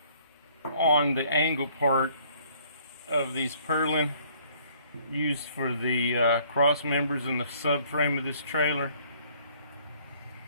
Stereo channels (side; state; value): both; inverted; correlation -0.60